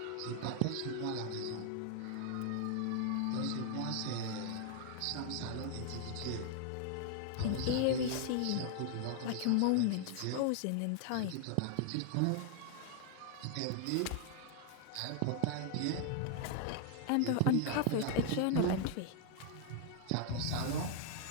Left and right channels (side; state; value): both; different; correlation 0.00